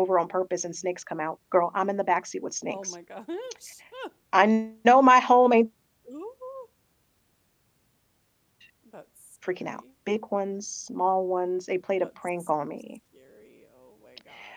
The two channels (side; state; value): both; identical; correlation 1.00